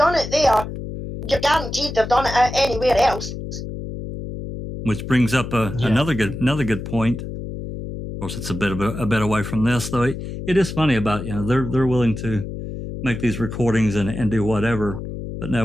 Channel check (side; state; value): left; noise; hum, 8 dB below the sound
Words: you're guaranteed they've done it anywhere else. Which brings up another good point. Of course, it's a bit away from this, though. It is funny about, they're willing to make these recordings and do whatever. But